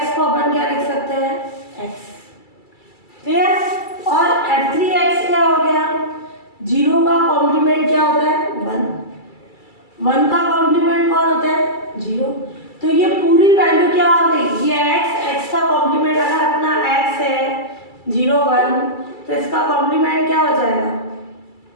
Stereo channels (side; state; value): right; late; 2.3 ms